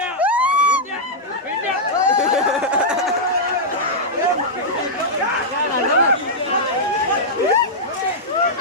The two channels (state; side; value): normal; both; correlation -0.08